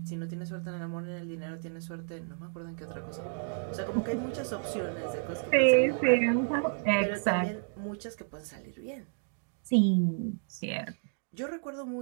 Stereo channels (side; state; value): left; silent; 57 dB below the other